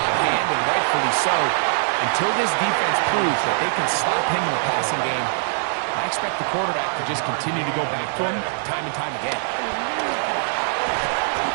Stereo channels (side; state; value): left; silent; 64 dB below the other